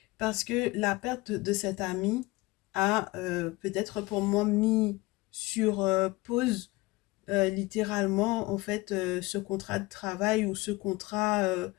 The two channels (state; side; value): quieter; right; 21.5 dB